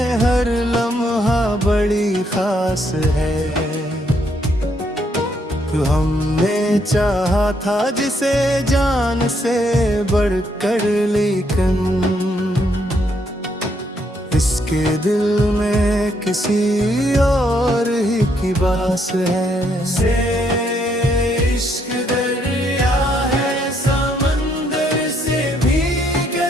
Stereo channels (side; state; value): both; normal; correlation 0.73